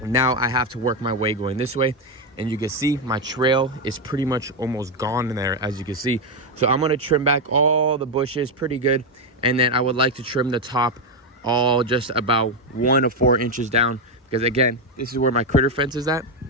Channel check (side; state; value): both; normal; correlation 0.06